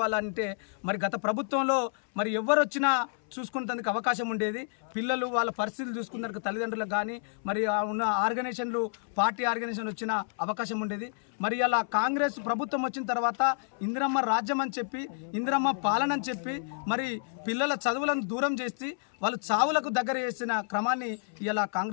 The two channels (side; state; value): right; silent; 58 dB below the other